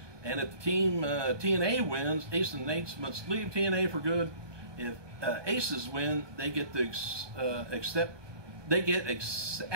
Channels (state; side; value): late; left; 1.2 ms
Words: And if the team TNA wins, Aces and Eights must leave TNA for good. If Aces win, they get to